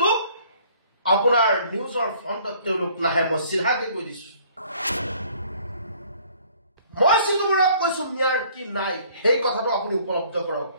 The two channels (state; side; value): inverted; both; correlation -0.57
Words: আপোনাৰ নিউজৰ ফ্ৰণ্টত তেওঁলোক নাহে মই সিধাকে কৈ দিছো মই সিটো বৰুৱাক কৈছো মিয়াৰ কি নাই সেই কথাটো আপুনি উপলব্ধ কৰক